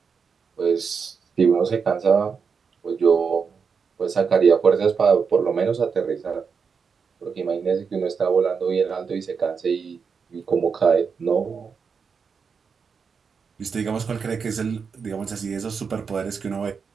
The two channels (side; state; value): left; quieter; 5.8 dB